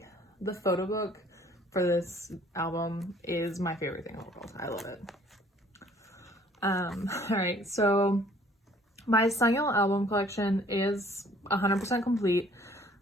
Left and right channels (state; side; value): normal; both; correlation 0.57